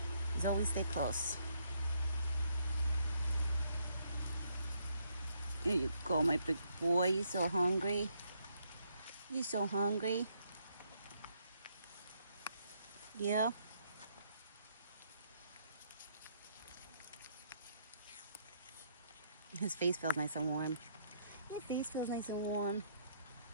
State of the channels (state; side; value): inverted; both; correlation -0.72